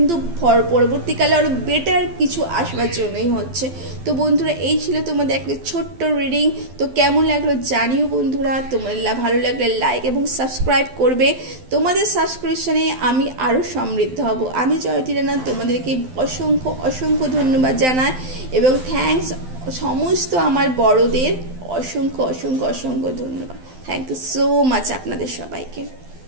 পরবর্তীকালে আরও বেটার কিছু আসবার জন্যই হচ্ছে। তো বন্ধুরা, এই ছিল তোমাদের একটা ছোট্ট রিডিং। তো কেমন লাগলো জানিও বন্ধুরা। তোমাদের ভালো লাগলে লাইক এবং সাবস্ক্রাইব করবে। তোমাদের সাবস্ক্রিপশনে আমি আরও সমৃদ্ধ হব। আমি জয়তী রানা তোমাদেরকে অসংখ্য অসংখ্য ধন্যবাদ জানাই, এবং থ্যাঙ্কস সমস্ত আমার বড়দের অসংখ্য অসংখ্য অসংখ্য ধন্যবাদ। থ্যাংক ইউ সো মাচ আপনাদের সবাইকে।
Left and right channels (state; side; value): late; left; 12 ms